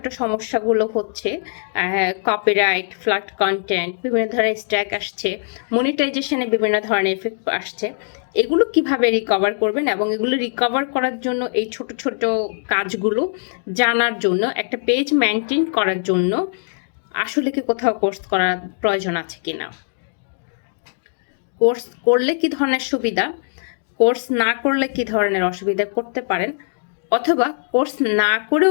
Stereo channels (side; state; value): right; silent; digital silence